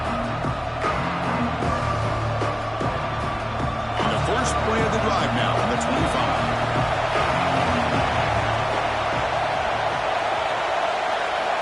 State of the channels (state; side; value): identical; both; correlation 1.00